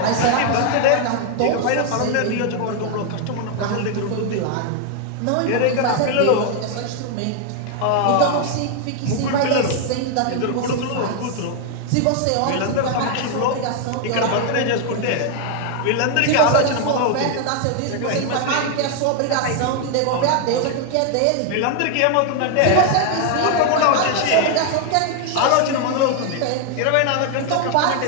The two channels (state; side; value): different; both; correlation 0.00